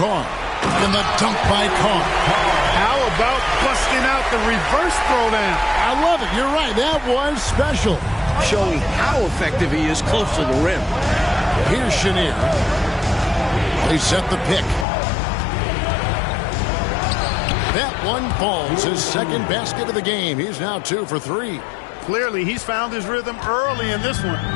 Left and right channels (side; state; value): right; drops out; at 14.9 s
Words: And the dunk by Carr. How about busting out the reverse throwdown? I love it. You're right. That was special. Showing how effective he is close to the rim. Here's Chenier. They set the pick. That one falls. His second basket of the game. He's now 2 for 3. Clearly, he's found his rhythm early in this